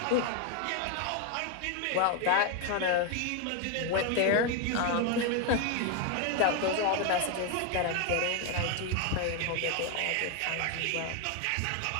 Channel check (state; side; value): different; both; correlation 0.01